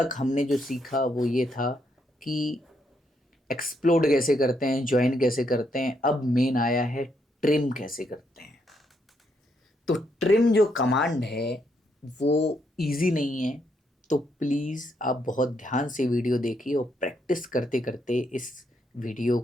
हमने जो सीखा वो ये था कि एक्सप्लोड कैसे करते हैं, जॉइन कैसे करते हैं। अब मेन आया है ट्रिम कैसे करते हैं। तो ट्रिम जो कमांड है वो इजी नहीं है। तो प्लीज़ आप बहुत ध्यान से वीडियो देखिए और प्रैक्टिस करते करते इस वीडियो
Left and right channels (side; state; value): both; normal; correlation 0.77